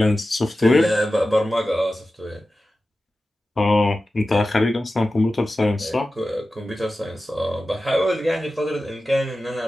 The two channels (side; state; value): both; normal; correlation 0.94